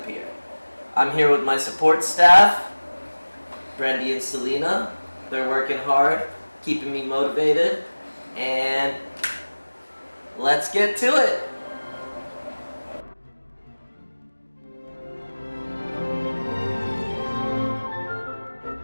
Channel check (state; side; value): inverted; both; correlation -1.00